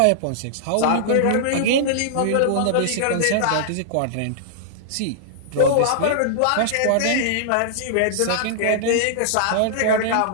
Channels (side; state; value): both; different; correlation -0.01